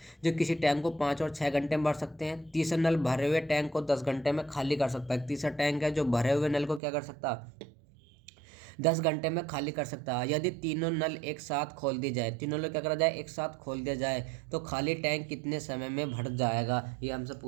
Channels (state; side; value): drops out; left; at 6.8 s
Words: जो किसी टैंक को 5 और 6 घंटे में भर सकते हैं। तीसरा नल भरे हुए टैंक को 10 घंटे में खाली कर सकता है। तीसरा टैंक है जो भरे हुए नल को क्या कर सकता है 10 घंटे में खाली कर सकता है। यदि तीनों नल एक साथ खोल दी जाए, तीनों नल क्या करा जाए एक साथ खोल दिया जाए तो खाली टैंक कितने समय में भर जाएगा, ये हमसे